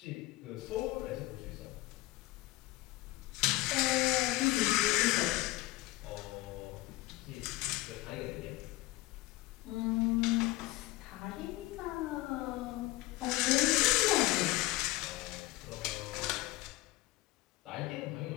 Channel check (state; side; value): quieter; right; 19.7 dB